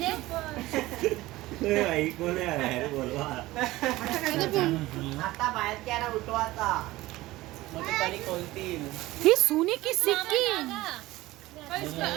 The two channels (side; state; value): left; quieter; 18.1 dB